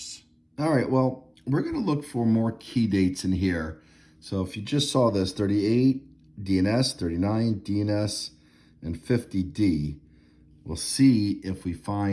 All right, well, we're going to look for more key dates in here. So if you just saw this, 38 DNS, 39 DNS, and 50D, we'll see if we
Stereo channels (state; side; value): identical; both; correlation 1.00